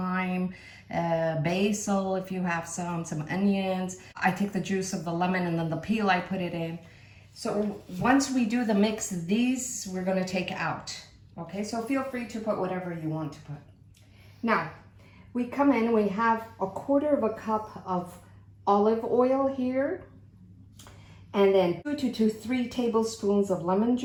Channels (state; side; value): identical; both; correlation 1.00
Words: basil if you have some onions. I take the juice of the lemon and then the peel I put it in. So once we do the mix, these we're gonna take out. Okay, so feel free to put whatever you want to put. Now, we come in, we have 1/4 cup of olive oil here. And then 2 to 3 tablespoons of lemon